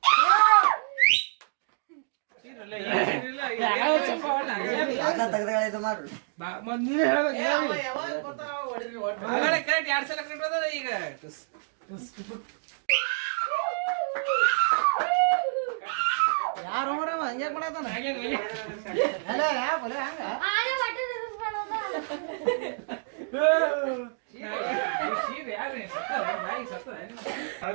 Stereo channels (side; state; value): left; silent; digital silence